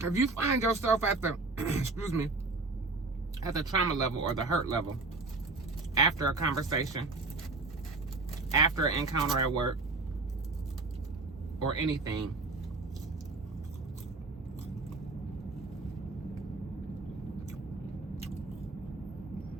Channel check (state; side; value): quieter; left; 3.5 dB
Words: If you find yourself at the, excuse me, at the trauma level or the hurt level, after a conversation, after an encounter at work, or anything,